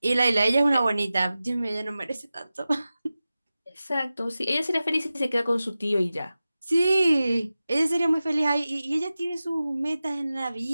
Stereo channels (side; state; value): both; inverted; correlation -0.95